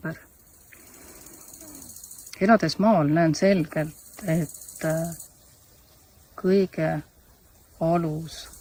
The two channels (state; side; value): identical; both; correlation 1.00